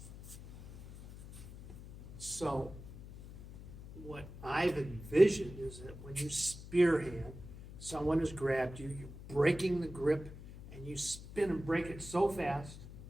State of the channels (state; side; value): noise; left; hum, 14 dB below the sound